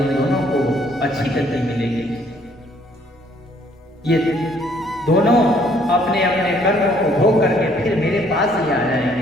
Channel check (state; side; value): normal; both; correlation 0.64